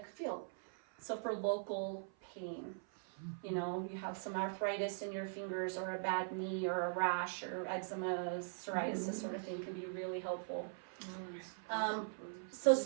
field. So for local pain, you have some arthritis in your fingers or a bad knee or a rash or eczema, psoriasis sort of thing can be really helpful. So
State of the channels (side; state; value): left; silent; 50 dB below the other